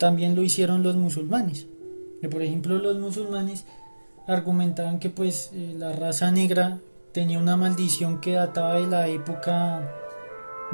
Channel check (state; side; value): inverted; both; correlation -1.00